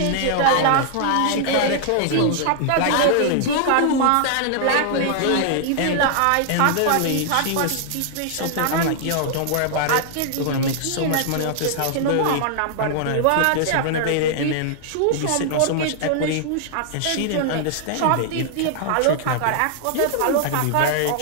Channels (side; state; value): both; different; correlation -0.01